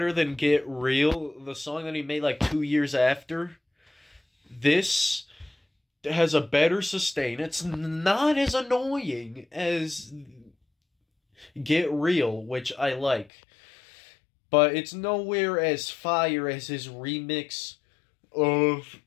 than Get Real, the song that he made like 2 years after. This has a better sustain. It's not as annoying as Get Real, which I like. But it's nowhere as fire as his remix of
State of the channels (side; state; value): right; drops out; at 13.3 s